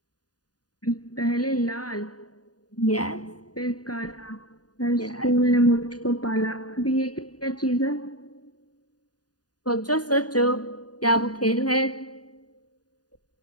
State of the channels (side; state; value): right; late; 0.69 ms